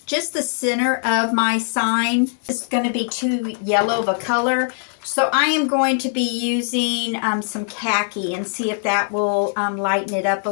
just the center of my sign. It's going to be too yellow of a color. So I am going to be using some khaki and see if that will lighten it up a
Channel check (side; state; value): right; silent; digital silence